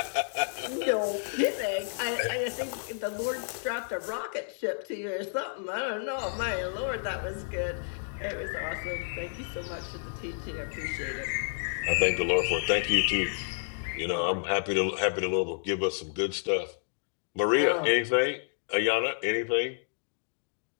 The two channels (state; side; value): silent; right; digital silence